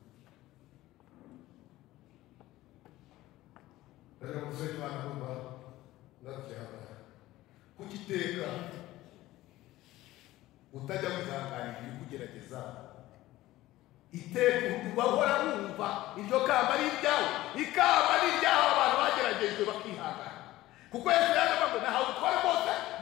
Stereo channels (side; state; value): right; quieter; 16.6 dB